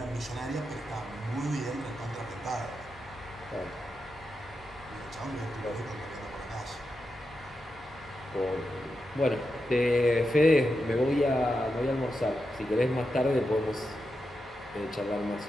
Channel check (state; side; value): normal; both; correlation 0.88